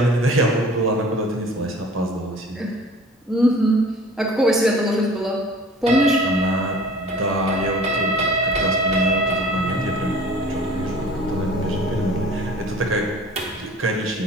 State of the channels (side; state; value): both; normal; correlation 0.46